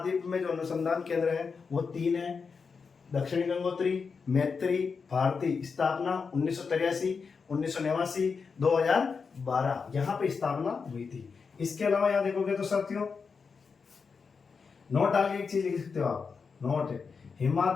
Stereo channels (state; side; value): quieter; right; 5.3 dB